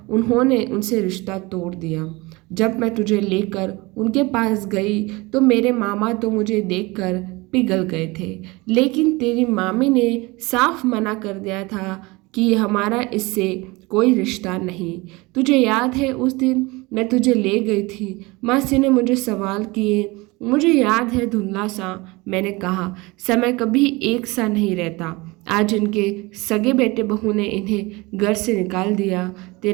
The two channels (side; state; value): left; quieter; 23.7 dB